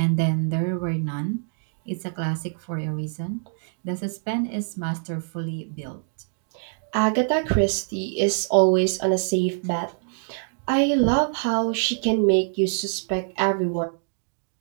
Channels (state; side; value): silent; left; digital silence